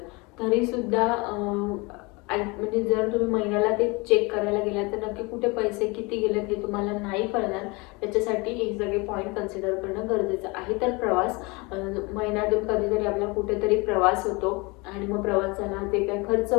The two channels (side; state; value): right; quieter; 26.7 dB